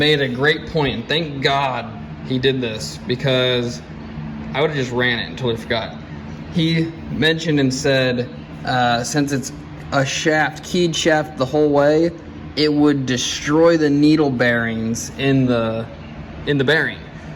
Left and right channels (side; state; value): both; identical; correlation 1.00